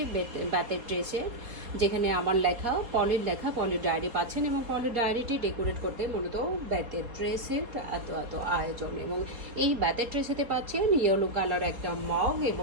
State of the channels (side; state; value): left; late; 4.2 ms